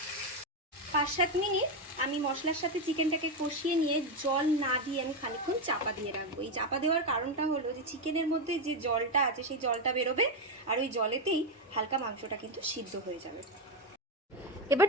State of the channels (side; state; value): both; normal; correlation 0.08